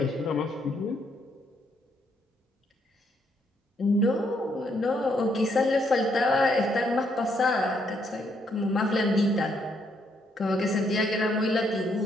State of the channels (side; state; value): both; normal; correlation 0.73